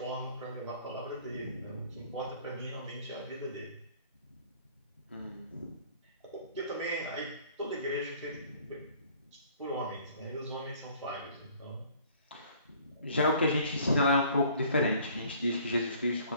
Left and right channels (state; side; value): inverted; both; correlation -0.55